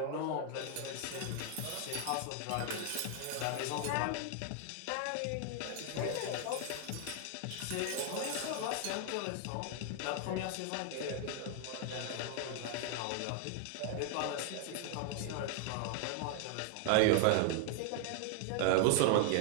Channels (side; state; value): both; different; correlation 0.00